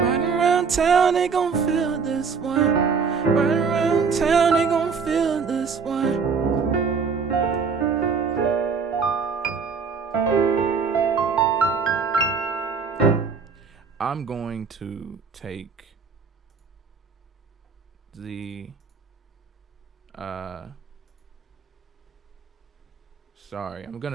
around town they gon' feel this one. Right around town they gon' feel this one. I'm going to take the I'm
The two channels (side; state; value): left; quieter; 5.5 dB